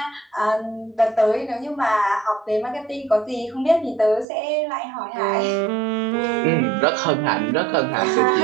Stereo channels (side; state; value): left; drops out; at 4.2 s